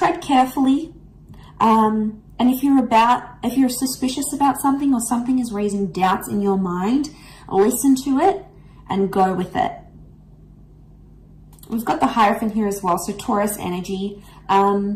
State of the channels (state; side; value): identical; both; correlation 1.00